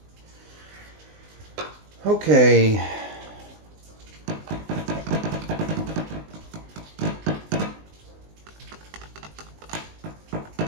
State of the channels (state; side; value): late; left; 19 ms